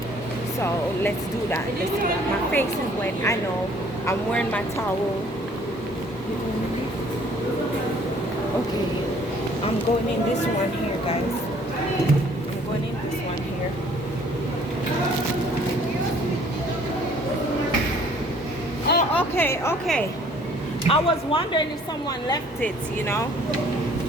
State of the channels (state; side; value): normal; both; correlation 0.58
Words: So let's do that. My face is wet, I know. I'm wearing my towel. Okay, I'm going in this one here, guys. I'm going in this one here. Oh, okay. I was wondering if someone left it, you know.